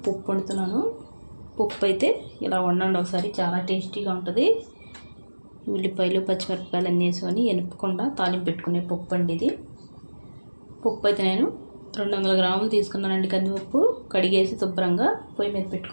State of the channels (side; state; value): both; inverted; correlation -1.00